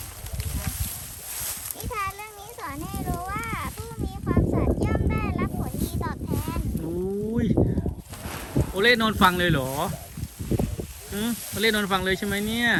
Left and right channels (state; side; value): identical; both; correlation 1.00